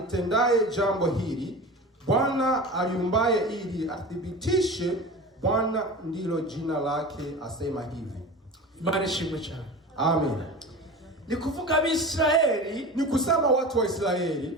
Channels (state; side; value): normal; both; correlation 0.33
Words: jambo hili, Bwana aliumbaye ili athibitishe, Bwana ndilo jina lake, asema hivi. Imani ishimwe cyane. Amen. Ni kuvuga Abisirayeli, ni kusema watu wa Israeli